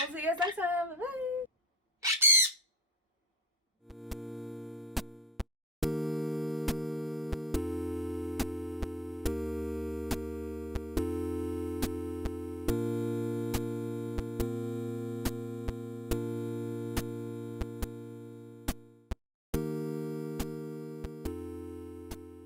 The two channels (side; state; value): both; normal; correlation 0.53